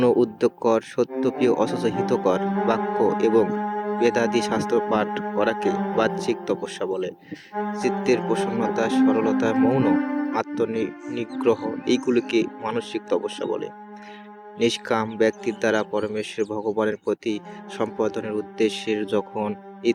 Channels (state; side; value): identical; both; correlation 1.00